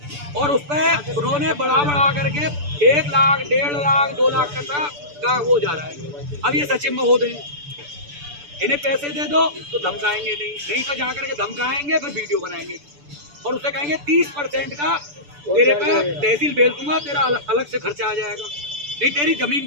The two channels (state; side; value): late; left; 6.9 ms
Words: और उस पर उन्होंने बढ़ा करके 1 लाख, 1.5 लाख, 2 लाख का वो जा रहा है। अब ये सचिव महोदय इन्हें पैसे दे दो तो धमकाएंगे नहीं तो जा करके धमकाएंगे, फिर वीडियो बनाएंगे और उससे कहेंगे 30% का तेरे पे तहसील भेज दूंगा, तेरा अलग से खर्चा आ जाएगा, नहीं तेरी जमीन